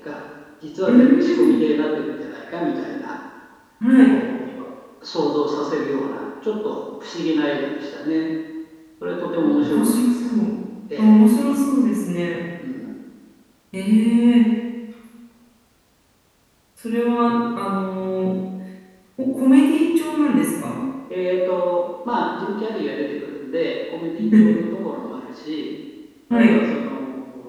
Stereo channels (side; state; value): both; identical; correlation 1.00